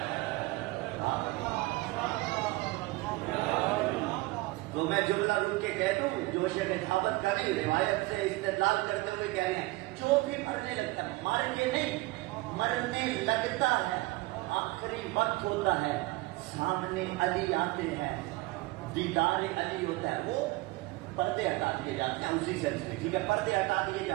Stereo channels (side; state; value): left; quieter; 21.6 dB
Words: تو میں جملہ رک کے کہہ دوں، جو شیخ ثابت کریں روایت سے استدلال کرتے ہوئے کہہ رہے ہیں، جو بھی مرنے لگتا ہے، مر کے نہیں، مرنے لگتا ہے، آخری وقت ہوتا ہے، سامنے علی آتے ہیں، دیدار علی ہوتا ہے، وہ پردے ہٹا دیے جاتے ہیں. اسی سینس میں ٹھیک ہے، پردے ہٹا دیے